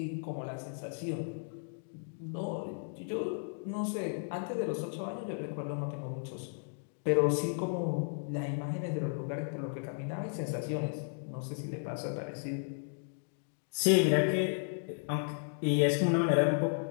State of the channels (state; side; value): silent; right; digital silence